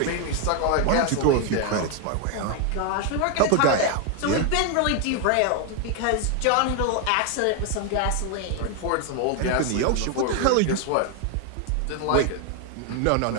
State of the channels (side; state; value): both; different; correlation 0.01